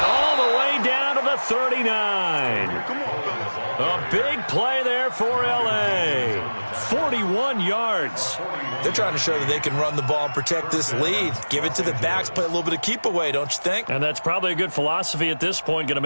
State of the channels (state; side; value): inverted; both; correlation -1.00